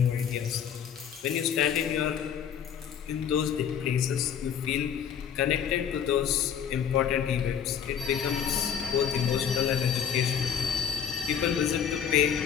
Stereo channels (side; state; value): right; quieter; 8.2 dB